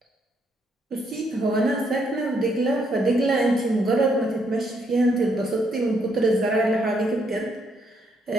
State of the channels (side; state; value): both; normal; correlation 0.73